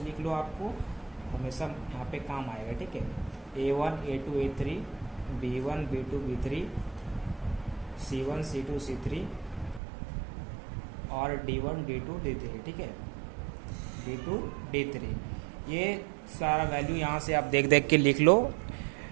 लिख लो, आपको हमेशा यहाँ पे काम आएगा। ठीक है, a1 a2 a3 b1 b2 b3 c1 c2 c3 और d1 d2 d3। ठीक है, d2 d3 ये सारा वैल्यू यहाँ से आप देख देख के लिख लो।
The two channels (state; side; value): drops out; left; at 9.8 s